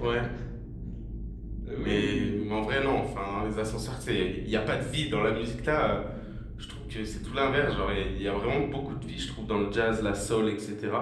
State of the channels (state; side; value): identical; both; correlation 1.00